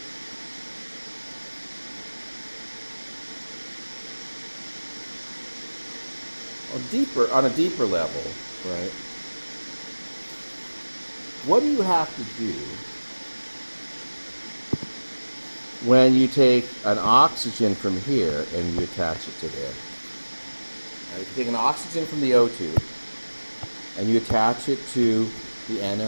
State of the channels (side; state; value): both; inverted; correlation -1.00